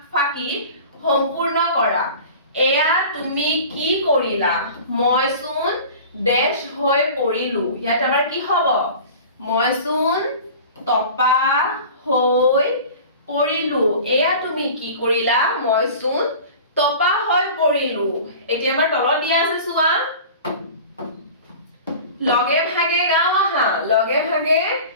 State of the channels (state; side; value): inverted; both; correlation -0.39